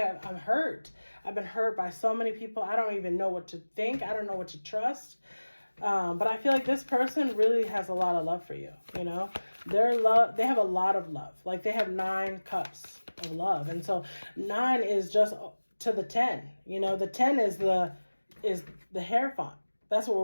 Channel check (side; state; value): both; inverted; correlation -1.00